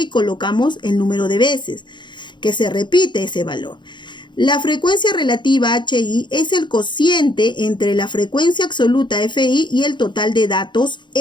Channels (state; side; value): late; right; 0.22 ms